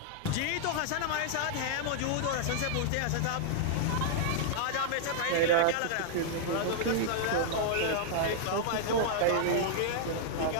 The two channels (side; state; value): both; different; correlation -0.01